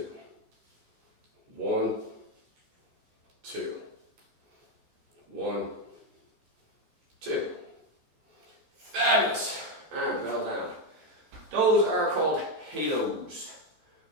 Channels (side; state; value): left; late; 14 ms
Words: 1, 2, 1, 2. Fabulous. Those are called halos.